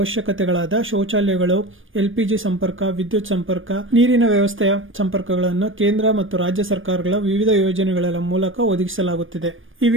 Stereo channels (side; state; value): left; late; 0.58 ms